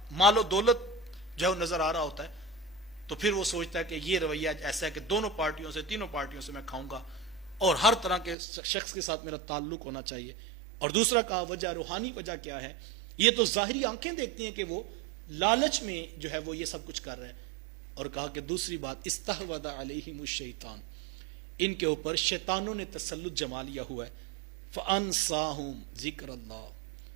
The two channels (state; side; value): drops out; left; at 8.3 s